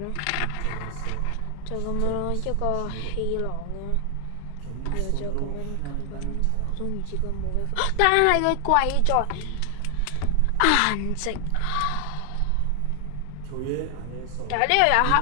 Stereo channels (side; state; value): both; different; correlation 0.00